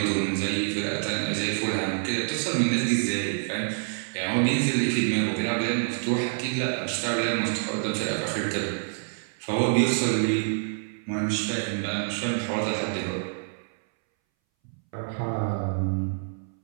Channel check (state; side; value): silent; left; 60 dB below the other